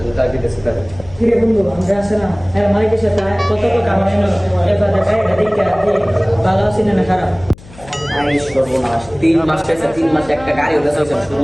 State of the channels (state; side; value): noise; left; hum, 21 dB below the sound